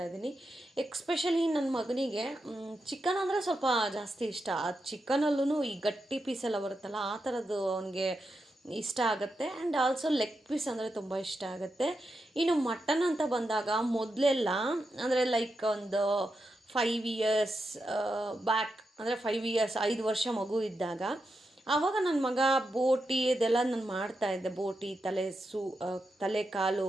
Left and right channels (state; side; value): normal; both; correlation 0.86